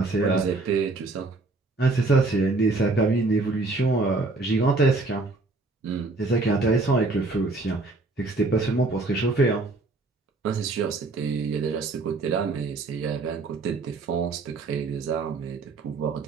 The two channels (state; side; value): quieter; left; 3.5 dB